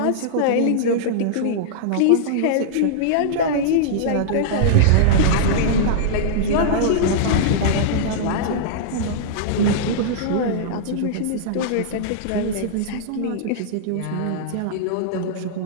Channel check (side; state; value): both; different; correlation -0.02